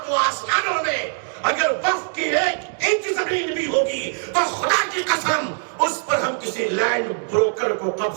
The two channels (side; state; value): left; silent; 55 dB below the other